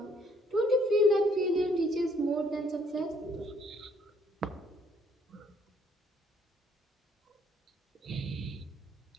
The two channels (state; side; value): normal; both; correlation 0.65